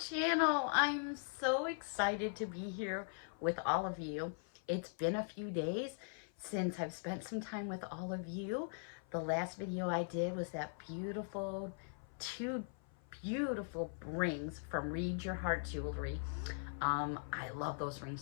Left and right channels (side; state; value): right; silent; 51 dB below the other